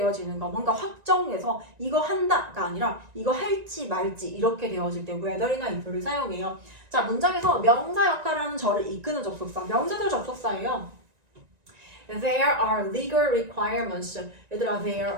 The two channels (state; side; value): late; left; 1.9 ms